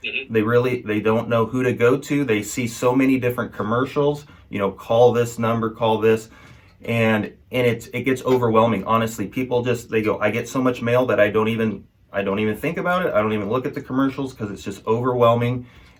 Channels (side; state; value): both; identical; correlation 1.00